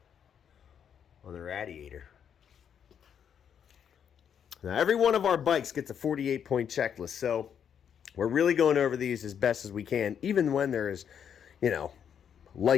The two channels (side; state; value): right; quieter; 8.2 dB